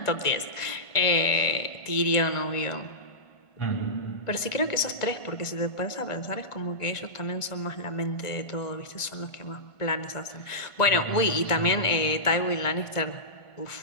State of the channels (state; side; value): late; right; 1.5 ms